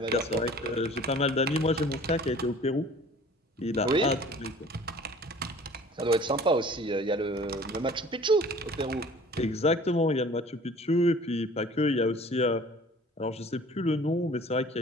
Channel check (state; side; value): normal; both; correlation 0.48